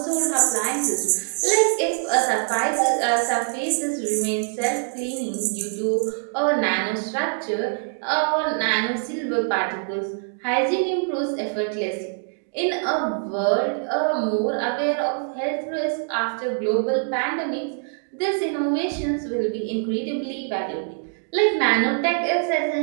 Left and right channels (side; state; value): left; silent; 60 dB below the other